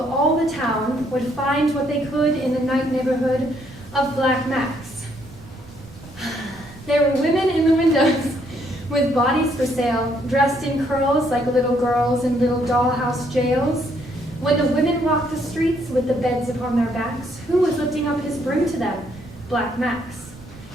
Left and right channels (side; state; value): right; noise; rumble, 21 dB below the sound